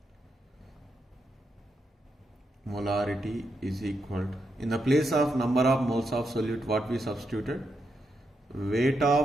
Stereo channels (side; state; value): both; normal; correlation 0.83